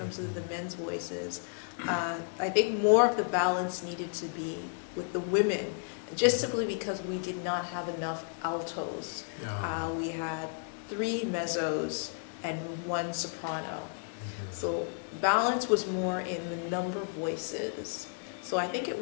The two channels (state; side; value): silent; right; 56 dB below the other